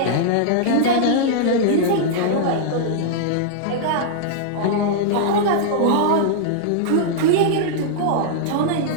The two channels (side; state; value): both; different; correlation -0.02